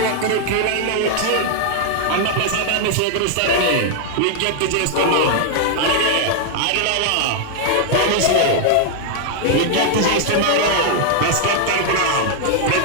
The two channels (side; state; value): both; different; correlation -0.01